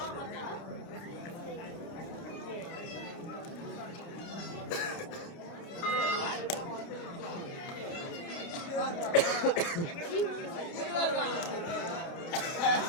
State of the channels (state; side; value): late; right; 29 ms